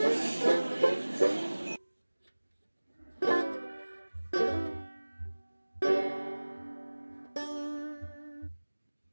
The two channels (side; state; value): both; inverted; correlation -1.00